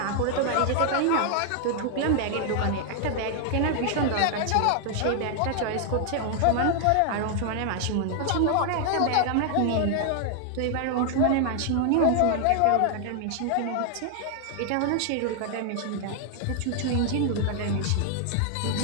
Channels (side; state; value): both; different; correlation 0.00